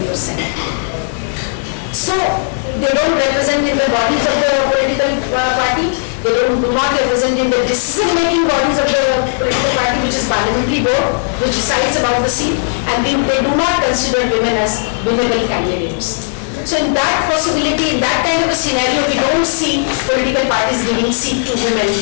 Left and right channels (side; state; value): right; silent; digital silence